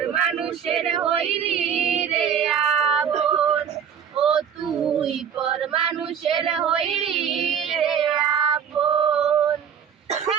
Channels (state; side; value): quieter; left; 7.9 dB